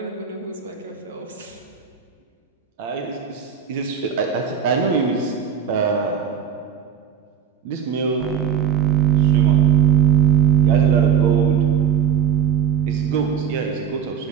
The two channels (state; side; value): quieter; left; 8.5 dB